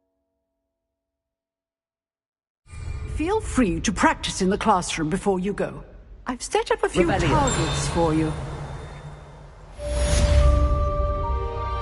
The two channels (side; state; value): both; identical; correlation 1.00